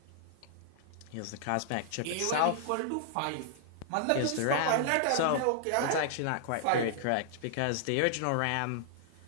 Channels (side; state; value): both; different; correlation -0.01